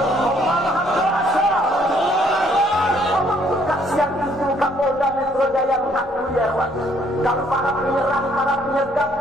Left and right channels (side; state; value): both; normal; correlation 0.65